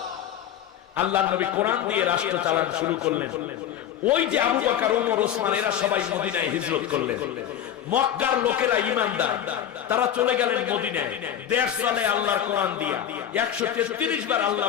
আল্লাহর নবী কোরআন দিয়ে রাষ্ট্র চালানো শুরু করলেন। ওই যে আবু বকর, ওমর, ওসমান এরা সবাই মদিনায় হিজরত করলেন। মক্কার লোকেরা ঈমানদার, তারা চলে গেলেন মদিনায়, দেশ চলে আল্লাহর কোরআন দিয়ে। 133 বার আল্লাহ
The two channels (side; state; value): right; quieter; 10.1 dB